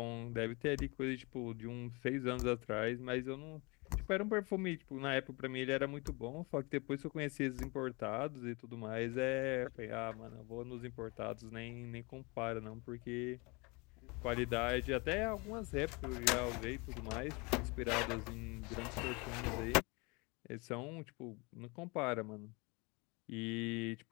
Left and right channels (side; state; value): right; quieter; 28.1 dB